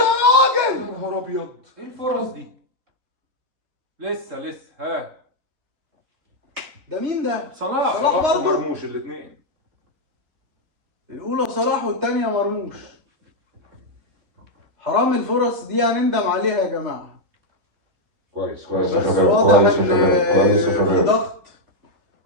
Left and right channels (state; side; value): late; left; 3.6 ms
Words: يا نهار ابيض. ايه الفرص دي؟ لسه ها ده مين ده؟ صلاح صلاح برضه؟ مرموش الاثنين. الأولى صلاح والتانية مرموش. حرام الفرص دي هنندم عليها يا جماعة. كويس بس يا شباب، واضح كويس يا إن شباب، كويس يا في شباب. ضغط.